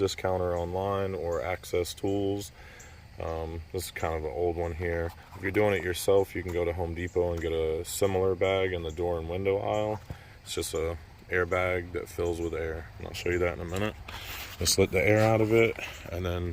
online or Access Tools. This is kind of an old one here. If you're doing it yourself, you can go to Home Depot and get a similar bag in the door and window aisle. It's just a airbag that fills with air, and I'll show you that in a minute. Just let the air out of it and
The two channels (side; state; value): both; identical; correlation 1.00